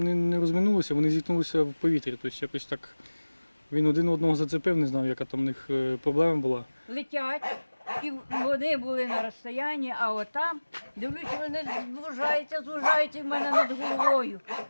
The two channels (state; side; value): inverted; both; correlation -1.00